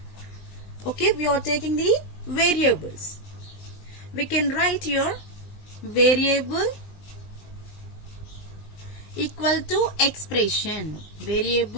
Okay, we are taking the variables. We can write here variable equal to expression.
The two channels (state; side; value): late; right; 20 ms